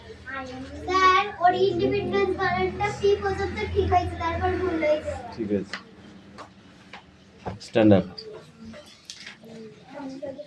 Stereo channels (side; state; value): both; identical; correlation 1.00